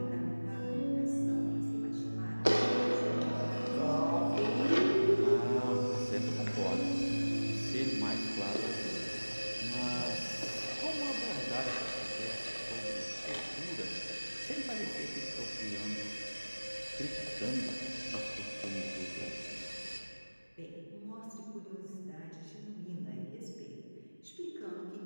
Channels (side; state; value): both; inverted; correlation -1.00